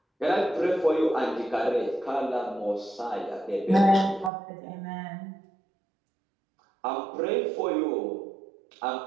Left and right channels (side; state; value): left; drops out; at 4.3 s